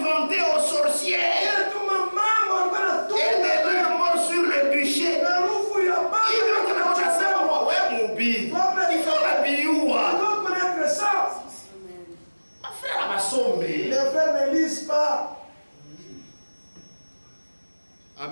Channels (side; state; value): both; inverted; correlation -1.00